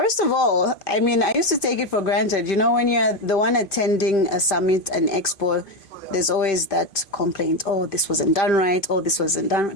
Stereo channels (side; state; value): right; late; 2.5 ms